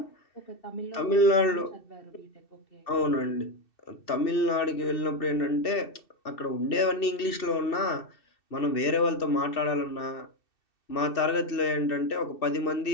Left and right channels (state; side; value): late; right; 2.7 ms